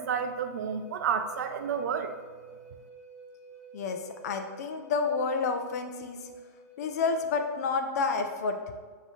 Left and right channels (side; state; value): both; normal; correlation -0.13